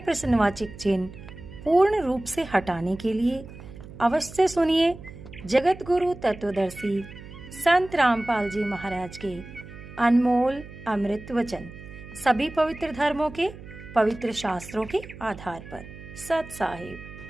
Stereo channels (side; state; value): right; noise; hum, 15 dB below the sound